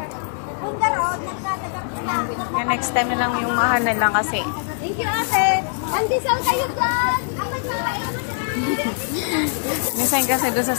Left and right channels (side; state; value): right; silent; 63 dB below the other